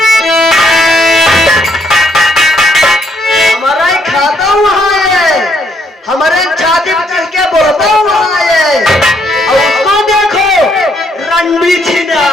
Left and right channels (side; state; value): both; normal; correlation 0.71